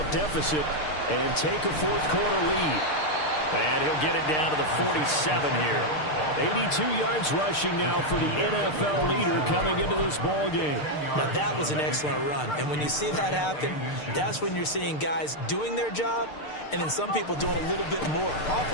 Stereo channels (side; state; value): right; late; 6.6 ms